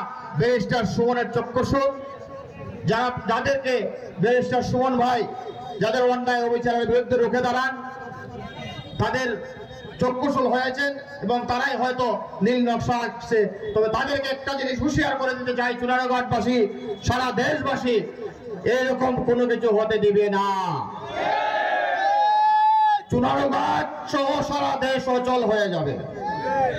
ব্যারিস্টার সুমনের চক্ষুষু, যাদেরকে ব্যারিস্টার সুমন ভাই যাদের অন্যায় অবিচারের বিরুদ্ধে রুখে দাঁড়ান, তাদের চক্ষুশূল হয়েছেন এবং তারাই হয়তো নীল নকশা আঁকছে। তবে তাদেরকে একটা জিনিস হুঁশিয়ার করে দিতে চাই, চুনারুঘাটবাসী, সারা দেশবাসী এরকম কোনো কিছু হতে দিবে না। চুনারুঘাট সহ সারা দেশ অচল হয়ে যাবে।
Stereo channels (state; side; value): identical; both; correlation 1.00